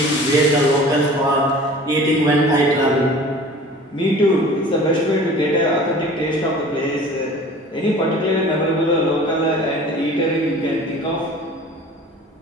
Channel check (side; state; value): both; normal; correlation 0.43